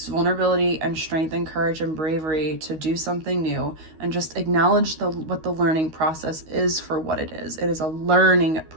vulnerability and strength and courage and bravery to do something new, and just acknowledge what the learning process is for what it is. It is a learning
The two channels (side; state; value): left; late; 13 ms